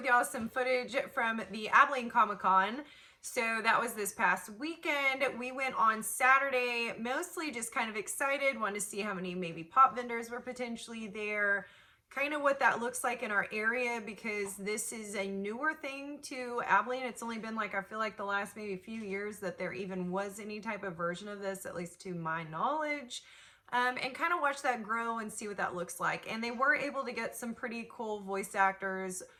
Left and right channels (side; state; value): both; identical; correlation 1.00